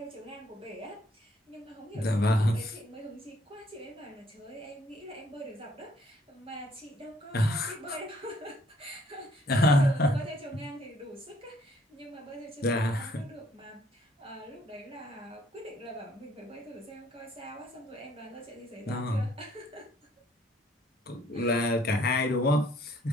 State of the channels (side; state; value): both; normal; correlation 0.64